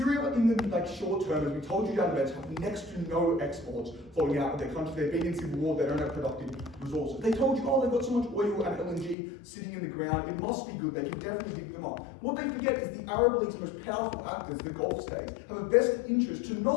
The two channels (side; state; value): right; drops out; at 9.2 s